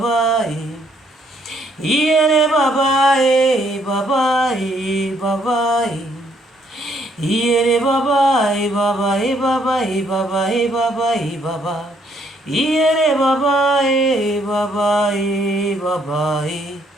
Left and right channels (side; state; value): both; normal; correlation 0.69